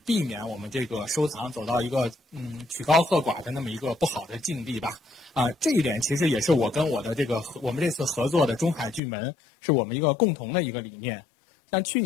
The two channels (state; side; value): drops out; right; at 9.0 s